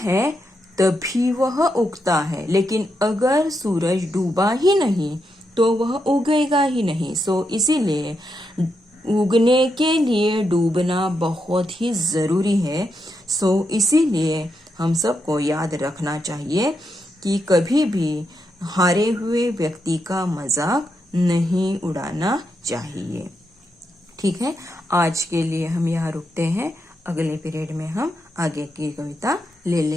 तभी वह उगता है। लेकिन अगर सूरज डूबा ही नहीं तो वह उगेगा ही नहीं। सो इसीलिए उगने के लिए डूबना बहुत ही जरूरी है। सो इसीलिए हम सबको याद रखना चाहिए कि कभी भी हारे हुए व्यक्ति का मजाक नहीं उड़ाना चाहिए। ठीक है, आज के लिए हम यहाँ रुकते हैं। अगले पीरियड में हम आगे की कविता ले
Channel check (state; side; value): normal; both; correlation 0.83